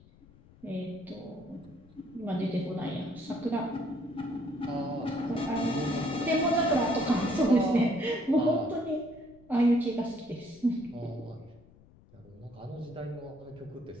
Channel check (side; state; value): left; noise; rumble, 25 dB below the sound